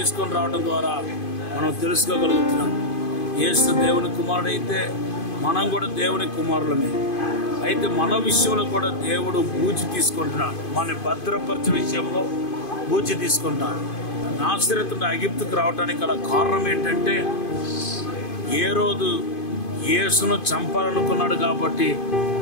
రావడం ద్వారా మనం తెలుసుకోగలుగుతున్నాం. యేసు దేవుని కుమారుడైతే మనం కూడా దేవుని కుమారులమే. అయితే మన విషయంలో కూడా దేవుడు బూచి తీసుకుంటున్నాడు. మన భద్రపరిచే విషయంలో బూచి తీసుకుంటున్నాడు. నాసరేతు నుండి ఐగుప్తుకు రావడానికి గల కారణం ఏంటంటే, ఏ రోజు యేసును చంపాలనుకున్నాడు కాబట్టి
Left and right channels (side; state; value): right; late; 2.5 ms